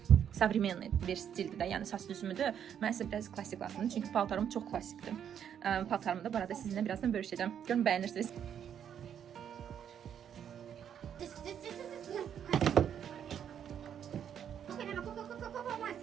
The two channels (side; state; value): left; quieter; 8.9 dB